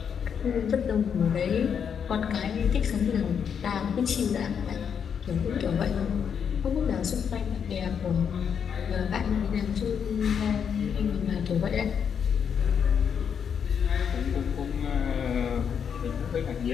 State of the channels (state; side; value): quieter; right; 7.4 dB